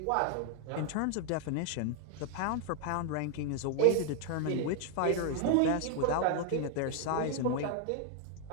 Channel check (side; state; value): both; different; correlation 0.00